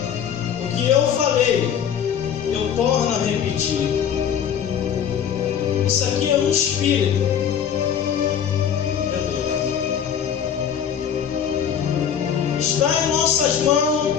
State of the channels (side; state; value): right; quieter; 8.4 dB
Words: o que eu falei, eu torno a repetir. Isso aqui é um espírito. Está em nossas mãos